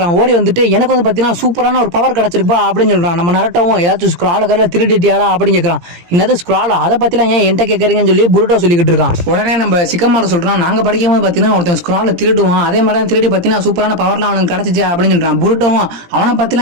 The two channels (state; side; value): late; left; 17 ms